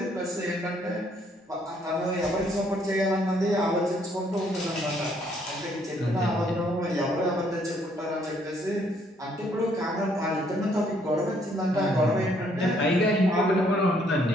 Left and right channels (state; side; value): normal; both; correlation 0.67